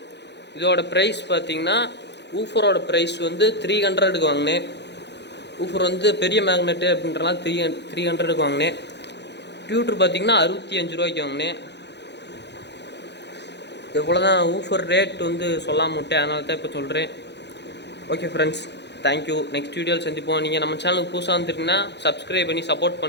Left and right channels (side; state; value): right; late; 0.50 ms